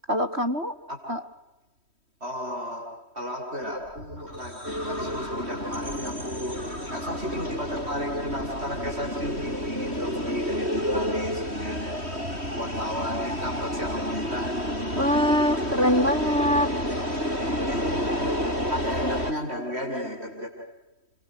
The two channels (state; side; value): late; left; 3.1 ms